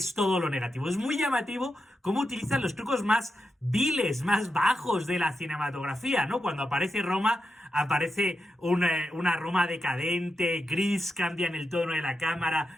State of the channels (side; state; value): both; normal; correlation 0.87